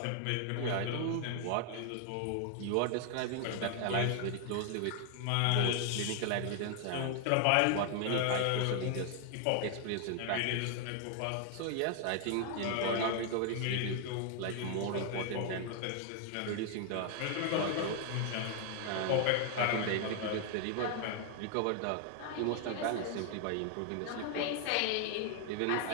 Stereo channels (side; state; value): both; different; correlation 0.00